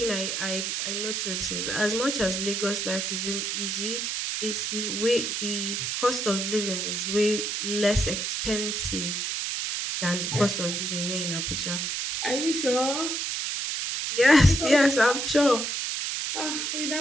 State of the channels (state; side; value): noise; right; hiss, 1 dB below the sound